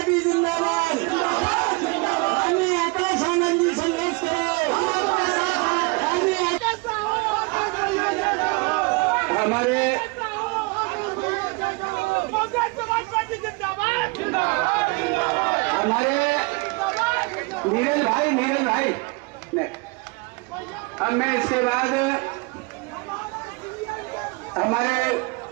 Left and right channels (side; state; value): left; quieter; 28.5 dB